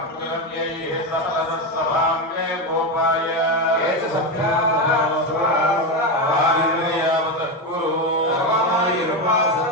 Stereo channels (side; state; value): both; normal; correlation 0.13